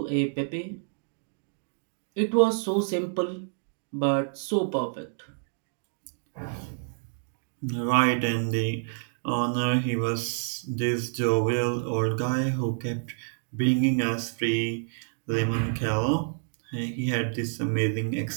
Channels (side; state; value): left; silent; digital silence